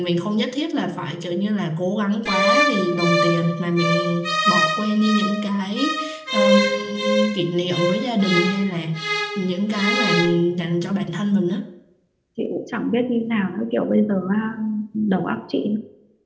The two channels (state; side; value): identical; both; correlation 1.00